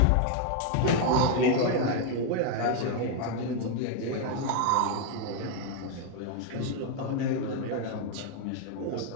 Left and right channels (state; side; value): different; both; correlation 0.01